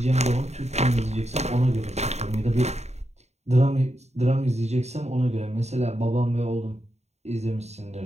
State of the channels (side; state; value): left; late; 0.32 ms